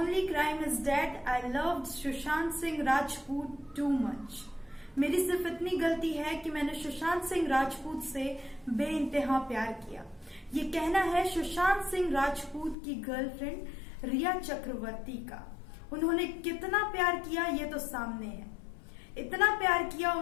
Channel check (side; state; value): right; drops out; at 12.8 s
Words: crime is that I loved Sushant Singh Rajput too much. मेरी सिर्फ इतनी गलती है कि मैंने सुशांत सिंह राजपूत से बेइंतहा प्यार किया। ये कहना है सुशांत सिंह राजपूत की गर्लफ्रेंड रिया चक्रवर्ती का। उन्होंने कितना प्यार किया ये तो सामने है। इतना प्यार किया